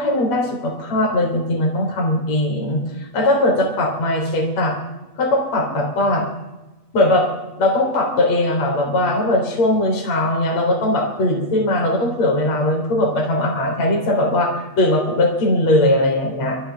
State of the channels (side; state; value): right; late; 8.2 ms